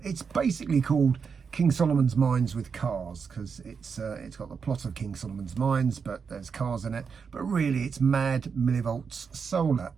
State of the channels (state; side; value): quieter; left; 5.9 dB